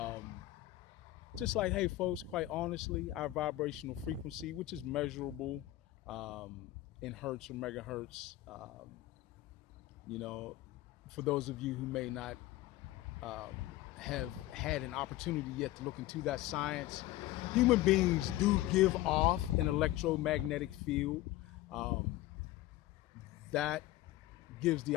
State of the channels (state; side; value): quieter; right; 16.1 dB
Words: just like, hey, folks, quite honestly, our vibrational frequency, which is measurable in hertz or megahertz, you know, for those of you who may not have had an opportunity yet to look into that science, human beings do give off an electromagnetic field um, that gives the